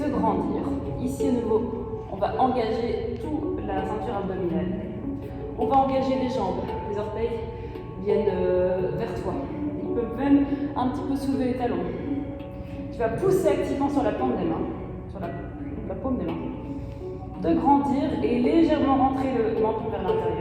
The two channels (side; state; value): both; identical; correlation 1.00